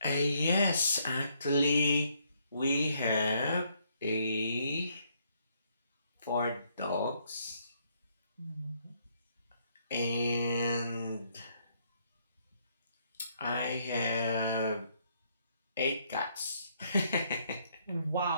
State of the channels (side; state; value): both; inverted; correlation -0.70